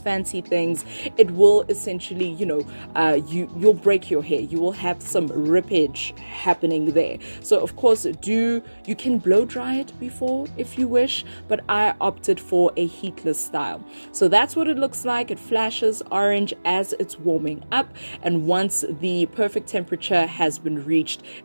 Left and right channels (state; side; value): inverted; both; correlation -1.00